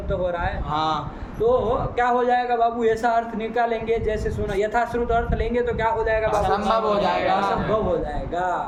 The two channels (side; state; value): both; identical; correlation 1.00